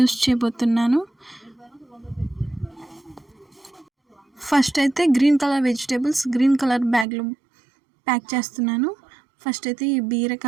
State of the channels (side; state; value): left; drops out; at 7.1 s